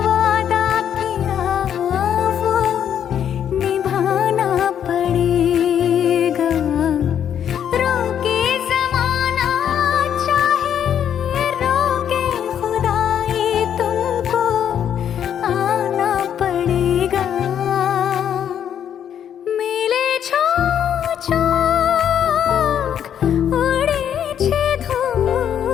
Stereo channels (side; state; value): right; quieter; 9.2 dB